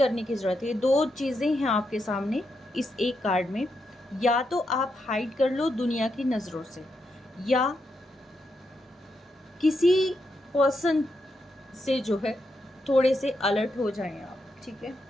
की ज़रूरत है। 2 चीज़ें हैं आपके सामने इस एक कार्ड में, या तो आप हाइड कर लो दुनिया की नज़रों से, या किसी पर्सन से जो है थोड़े से अलर्ट हो जाएं आप। ठीक है,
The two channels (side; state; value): both; normal; correlation 0.83